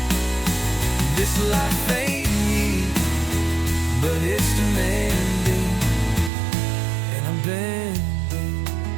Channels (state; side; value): drops out; left; at 6.3 s